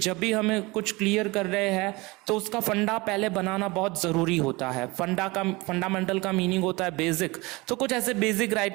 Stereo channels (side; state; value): left; quieter; 23.6 dB